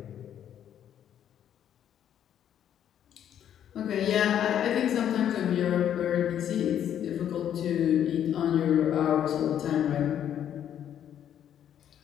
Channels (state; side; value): quieter; right; 10.0 dB